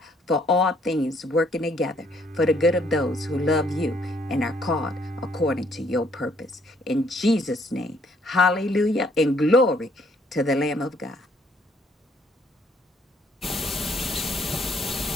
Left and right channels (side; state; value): both; normal; correlation 0.66